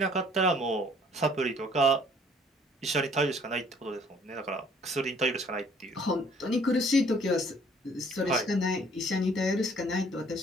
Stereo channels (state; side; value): normal; both; correlation 0.58